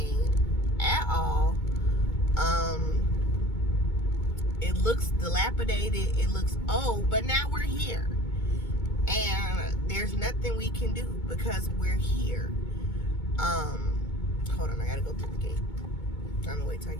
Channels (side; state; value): right; late; 2.2 ms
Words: at all. It looks dilapidated, it looks old, but now we're here. And there's nothing we can do because we're here. Hold on, I gotta go through the gate. I'm gonna wait till I